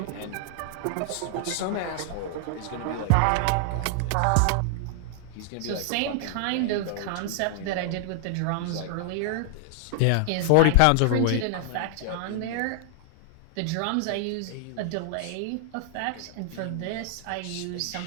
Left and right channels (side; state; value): both; different; correlation 0.00